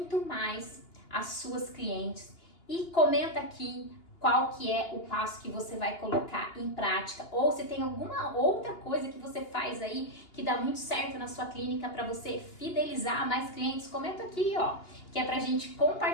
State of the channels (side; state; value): right; late; 2.8 ms